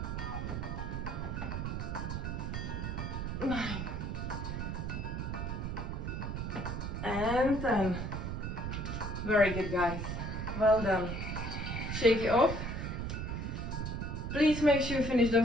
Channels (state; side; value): noise; right; rumble, 3 dB below the sound